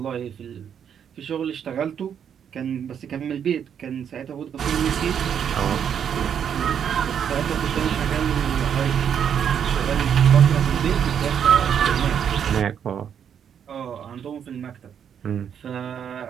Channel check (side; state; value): left; quieter; 8.3 dB